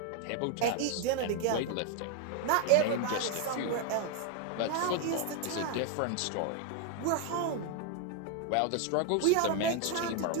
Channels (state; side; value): different; both; correlation 0.01